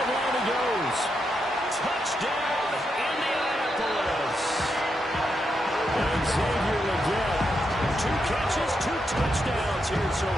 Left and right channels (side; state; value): both; normal; correlation 0.83